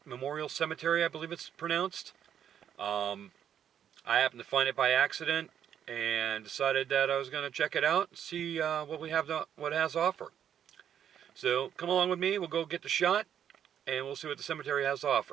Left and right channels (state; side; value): quieter; left; 9.3 dB